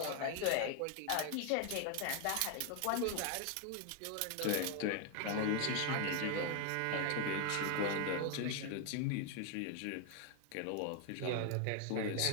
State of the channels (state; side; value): different; both; correlation 0.01